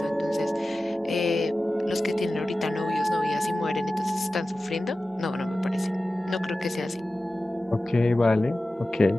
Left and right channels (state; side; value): normal; both; correlation 0.95